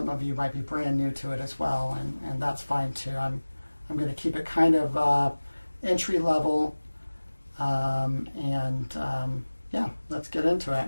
of you might be brand new to it as well, and that's fine too. I'm going to keep it kind of entry level, yeah, let's get into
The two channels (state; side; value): inverted; both; correlation -1.00